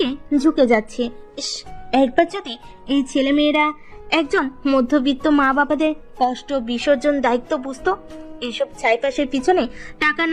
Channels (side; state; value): both; identical; correlation 1.00